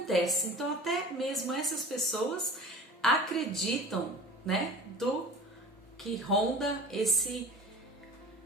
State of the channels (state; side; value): normal; both; correlation 0.40